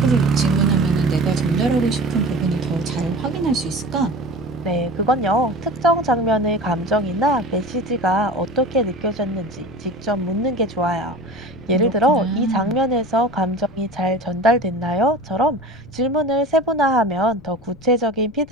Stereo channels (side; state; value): left; noise; rumble, 22 dB below the sound